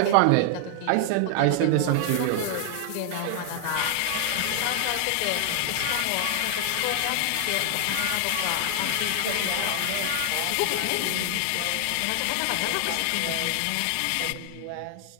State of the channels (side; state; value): both; different; correlation 0.00